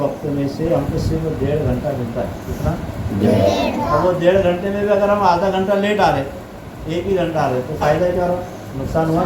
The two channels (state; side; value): identical; both; correlation 1.00